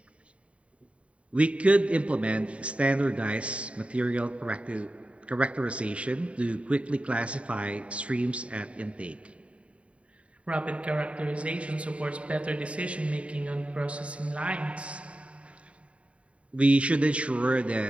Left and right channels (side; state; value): left; late; 0.063 ms